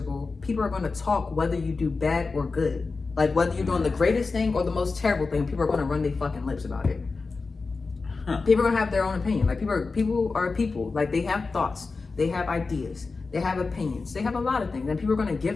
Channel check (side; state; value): right; quieter; 4.1 dB